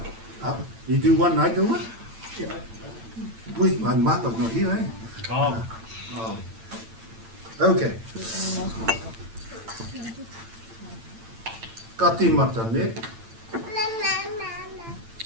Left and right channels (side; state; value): left; late; 8.9 ms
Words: You do one, I do one? Yeah. Wait, my mother's not here, eh? Oh. Okay. Ka tīmata, ne?